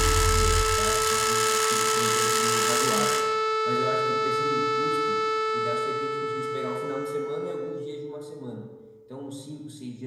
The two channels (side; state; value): both; identical; correlation 1.00